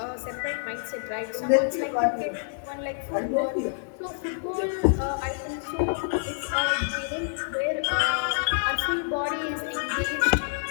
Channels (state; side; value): silent; right; 60 dB below the other